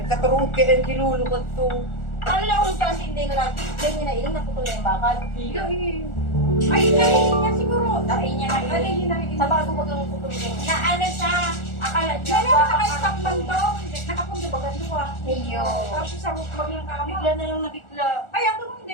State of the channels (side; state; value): right; late; 1.4 ms